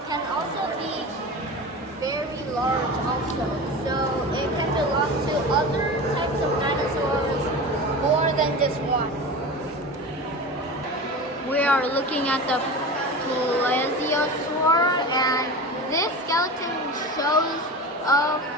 can also be very large also. So it can belong to other types of dinosaurs more than just one. We are looking at the Plesiosaur, and this skeleton shows of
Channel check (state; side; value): normal; both; correlation 0.29